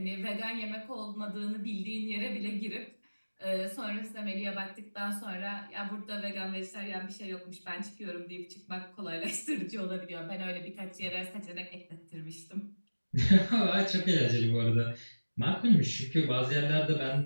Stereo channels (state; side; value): inverted; both; correlation -1.00